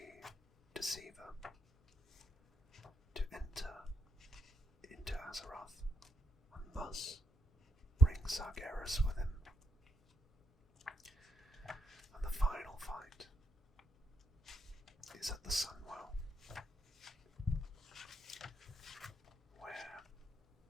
Deceiver, to enter into Azeroth and thus bring Sargeras with him. And the final fight is at the Sunwell, where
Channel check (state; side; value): normal; both; correlation 0.79